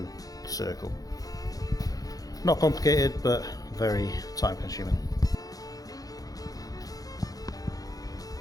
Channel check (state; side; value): late; right; 0.18 ms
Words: the circle. Not complicated, but very time consuming.